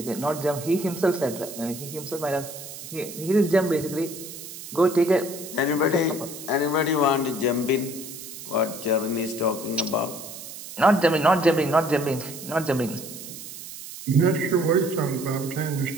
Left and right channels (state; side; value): noise; right; hiss, 12 dB below the sound